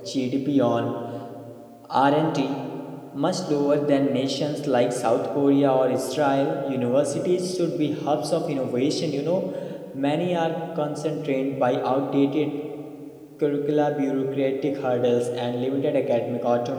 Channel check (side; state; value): both; identical; correlation 1.00